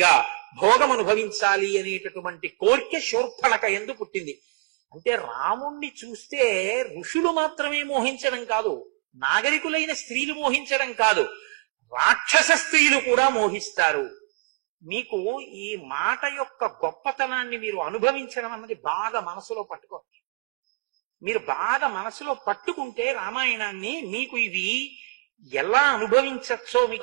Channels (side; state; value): left; quieter; 30.9 dB